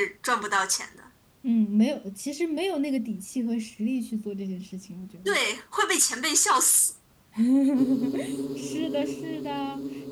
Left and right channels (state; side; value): identical; both; correlation 1.00